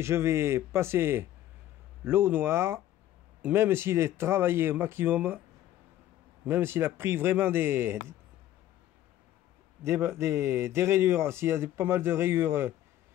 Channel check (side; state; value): right; quieter; 12.9 dB